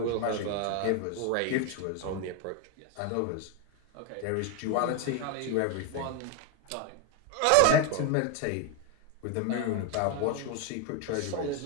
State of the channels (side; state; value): both; different; correlation 0.02